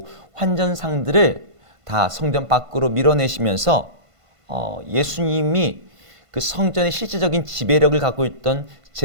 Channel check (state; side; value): late; left; 1.5 ms